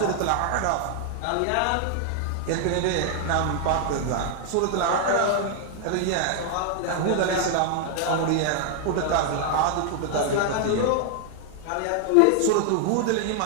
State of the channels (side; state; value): both; different; correlation 0.00